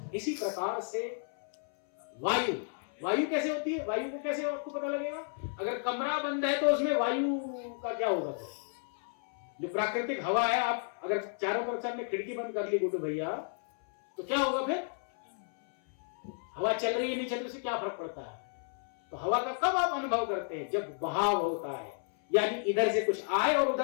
इसी प्रकार से वायु, वायु कैसे होती है? वायु को कैसे आपको पता लगेगा? अगर कमरा बंद है तो उसमें वायु का क्या होगा? तो जो प्राकृतिक हवा है, आप अगर चारों तरफ से आपने खिड़की बंद कर ली गुड्डू भैया, तो क्या होगा फिर? हवा चल रही है नहीं चल रही, उससे क्या फर्क पड़ता है? तो हवा का कब आप अनुभव करते हैं? जब बहाव होता है, यानी इधर से कुछ आए और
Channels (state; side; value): silent; right; 56 dB below the other